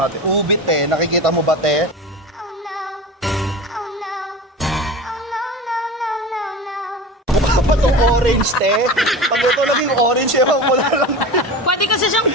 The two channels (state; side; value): normal; both; correlation 0.31